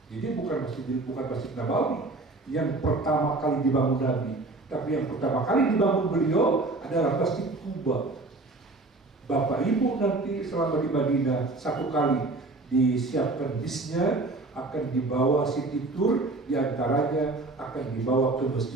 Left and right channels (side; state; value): left; quieter; 3.2 dB